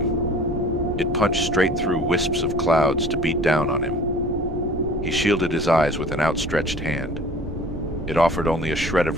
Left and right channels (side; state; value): both; normal; correlation 0.46